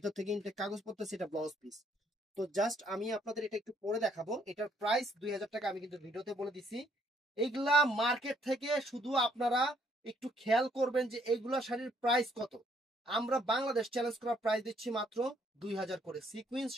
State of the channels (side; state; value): both; normal; correlation 0.67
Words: থেকে ইনটেক কাগজ পড়তেছে, এটা ব্লাউজ পিস। তো জাস্ট আমি আপনাদের এটা একটু পরে দেখাবো। এটার প্রাইস 2000 টাকা, আমি কিন্তু ভিডিওতে বলে দিছি। এইগুলা মার্কেট থেকে শুধু আপনারা একটু খেয়াল করবেন যে এইগুলা শাড়ির প্রাইস কত। আমরা বাংলাদেশ চ্যালেঞ্জ করা প্রাইস দিচ্ছি মাত্র 2000 করে। সিকুয়েন্স